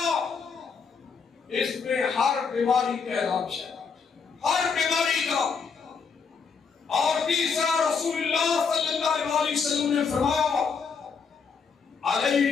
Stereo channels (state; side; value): quieter; right; 5.6 dB